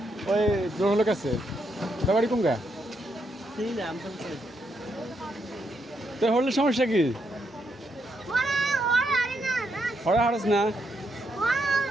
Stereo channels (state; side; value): normal; both; correlation 0.79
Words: ওই গ্রহলোক আছে তোর বাড়ি কোন গা তো হলে সমস্যা কি হরা হারস না